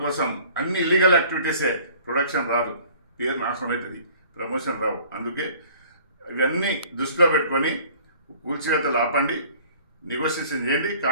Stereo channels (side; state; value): both; inverted; correlation -0.51